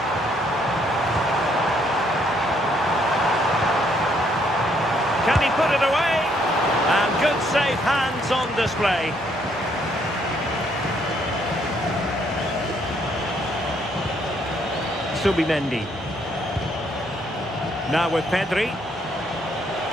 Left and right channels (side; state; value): both; normal; correlation 0.69